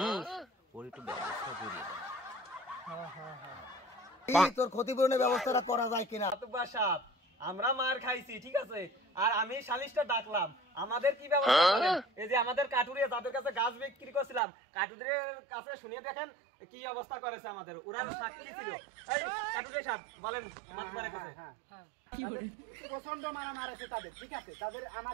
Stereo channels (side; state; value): left; drops out; at 14.4 s